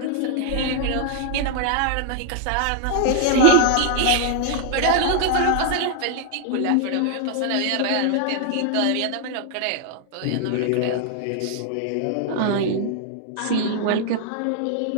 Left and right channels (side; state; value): both; different; correlation 0.00